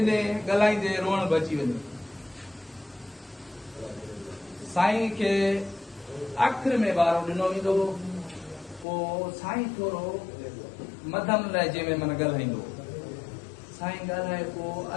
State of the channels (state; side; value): drops out; right; at 8.8 s